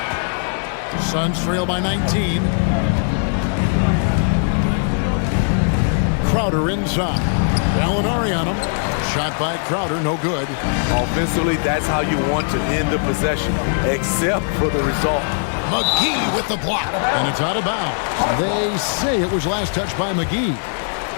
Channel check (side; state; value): right; silent; digital silence